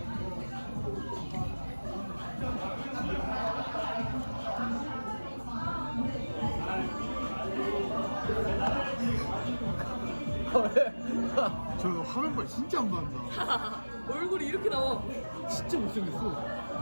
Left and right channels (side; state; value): both; inverted; correlation -1.00